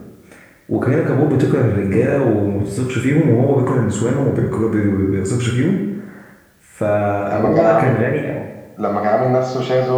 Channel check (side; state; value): both; identical; correlation 1.00